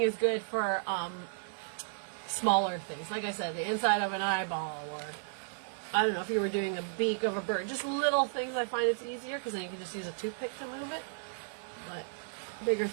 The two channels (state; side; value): silent; left; digital silence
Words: is good for smaller things. Like I said, the inside of an eyeball, or I don't know, if you were doing a beak of a bird, just little things. I find it's easier because then you can just use a toothpick to move it. But bigger